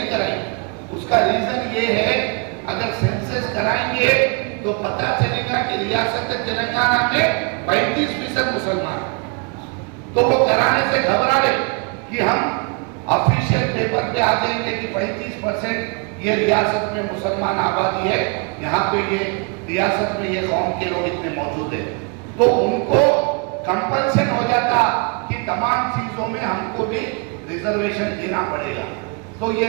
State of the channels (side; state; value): left; quieter; 33.8 dB